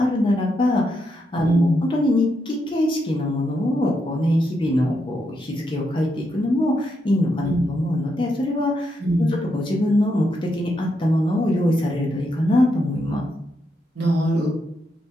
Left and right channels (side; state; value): both; normal; correlation 0.81